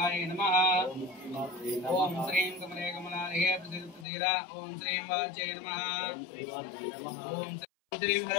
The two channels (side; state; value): right; drops out; at 4.0 s